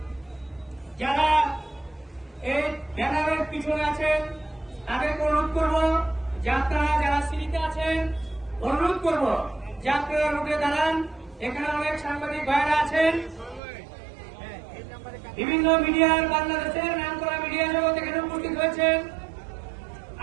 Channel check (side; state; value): left; drops out; at 13.6 s